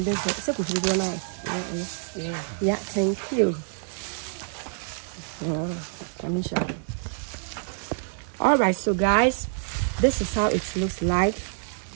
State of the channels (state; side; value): silent; left; digital silence